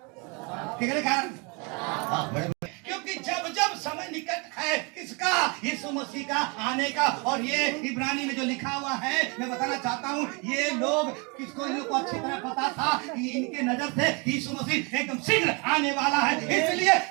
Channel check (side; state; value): left; quieter; 30.8 dB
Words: क्या कारण? हाँ, बड़े बड़े। क्योंकि जब जब समय निकट है किसका? यीशु मसीह का आने का। और ये इब्रानी में जो लिखा हुआ है, मैं बताना चाहता हूँ, ये लोग किसको, इन लोग को अच्छी तरह पता था कि इनके नजर से यीशु मसीह एकदम शीघ्र आने वाला है, इसलिए